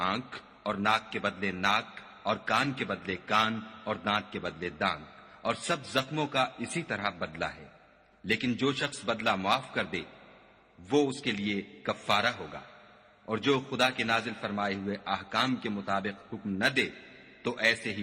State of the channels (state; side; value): identical; both; correlation 1.00